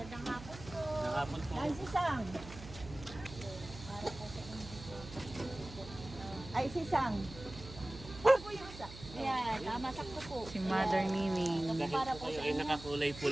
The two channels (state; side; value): noise; right; hum, 14 dB below the sound